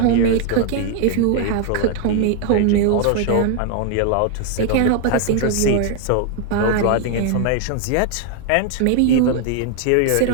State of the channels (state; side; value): different; both; correlation 0.00